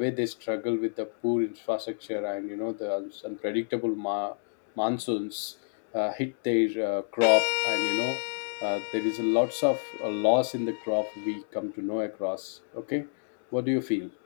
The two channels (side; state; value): right; silent; digital silence